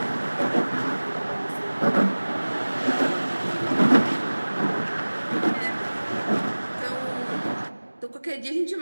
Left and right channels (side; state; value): both; inverted; correlation -1.00